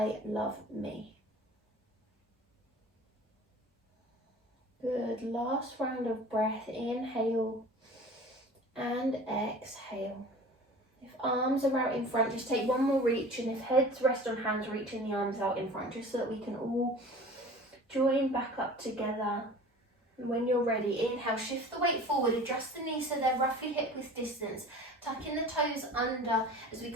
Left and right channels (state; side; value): normal; both; correlation 0.42